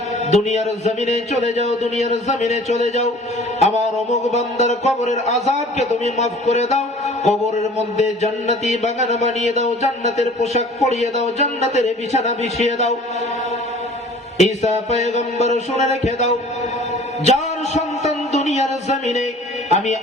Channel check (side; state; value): both; normal; correlation 0.48